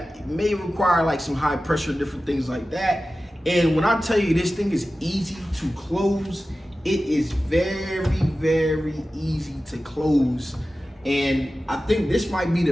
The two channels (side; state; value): both; normal; correlation 0.95